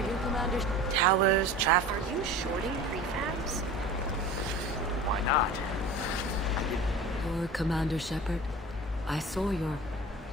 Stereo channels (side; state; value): both; normal; correlation 0.37